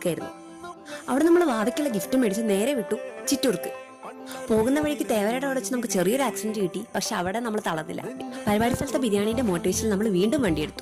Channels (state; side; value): identical; both; correlation 1.00